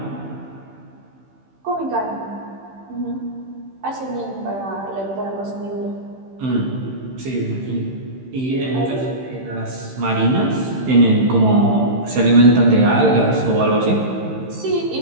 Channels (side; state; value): left; late; 15 ms